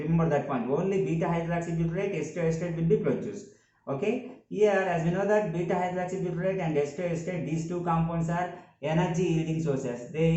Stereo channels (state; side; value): identical; both; correlation 1.00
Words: that point. Only beta hydroxybutyrate, acetoacetate will be produced. Okay. Here, as we know that beta hydroxybutyrate and acetoacetate, these two compounds are energy yielding sources. They